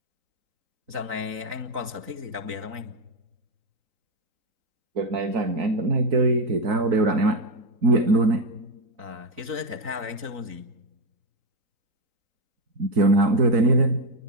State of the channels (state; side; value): late; left; 4.0 ms